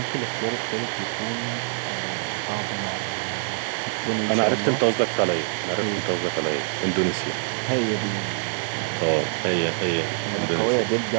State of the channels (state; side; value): silent; left; 58 dB below the other